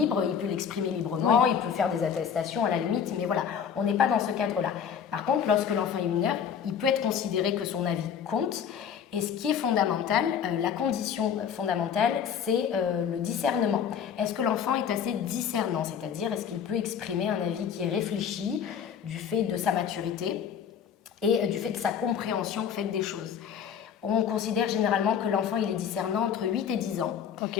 il peut l'exprimer librement, Oui. il peut faire des attestations à la limite, mais voilà, on n'est pas dans ce cadre-là. Par contre, lorsque l'enfant est mineur, il peut être considéré que son avis compte. Et ce qui est fondamental, la condition fondamentale, c'est le discernement. Est-ce que l'enfant est assez discernant? C'est-à-dire, est-ce qu'il peut exprimer un avis qui est réfléchi du fait de sa maturité et du fait de sa compréhension au fait des choses? On considère généralement que l'enfant il est discernant entre 8 et 10 ans.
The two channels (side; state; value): right; quieter; 7.9 dB